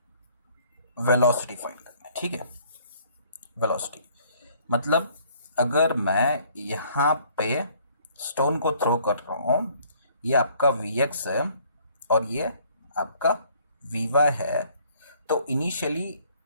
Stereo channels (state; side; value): inverted; both; correlation -0.60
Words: velocity find करना है, ठीक है। वेलोसिटी मतलब अगर मैं यहाँ पे स्टोन को थ्रो कर रहा हूँ, ये आपका Vx है और ये आपका Vy है, तो इनिशियली